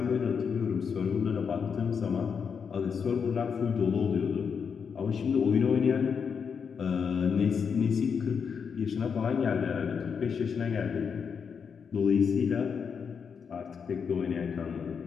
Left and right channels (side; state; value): right; quieter; 6.4 dB